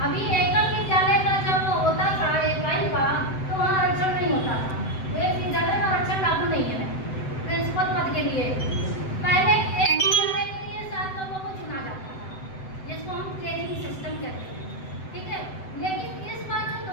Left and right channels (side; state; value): right; late; 7.8 ms